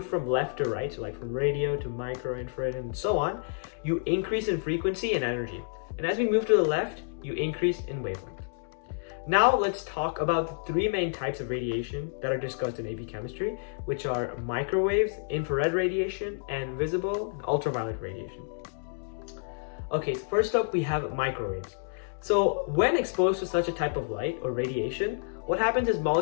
from left to right, so like from radio to micro, infrared, and so on, you increase in frequency and energy. And as we move to the left, you increase in wavelength. Now let's talk about the three main types of radiation that are discussed in AP chemistry, which are microwaves, infrared radiation, and visible and ultraviolet radiation. Okay, so first up we have microwaves. So when exposed to such a type of light or radiation, what happens is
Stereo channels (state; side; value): silent; right; digital silence